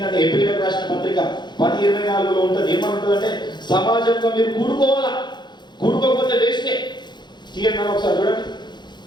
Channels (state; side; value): late; right; 0.21 ms